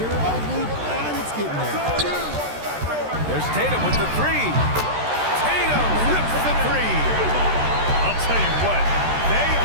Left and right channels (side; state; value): left; late; 13 ms